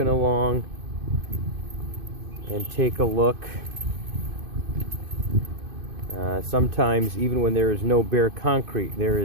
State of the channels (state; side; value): late; left; 2.5 ms